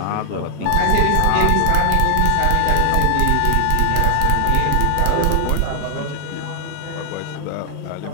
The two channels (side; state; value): both; different; correlation 0.00